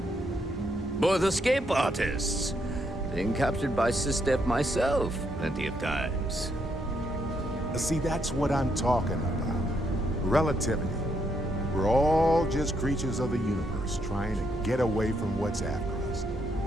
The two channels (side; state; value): both; normal; correlation 0.76